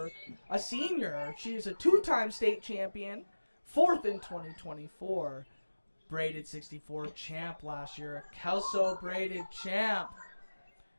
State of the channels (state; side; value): inverted; both; correlation -1.00